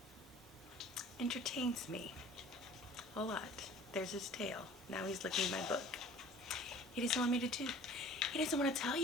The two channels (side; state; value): both; normal; correlation 0.47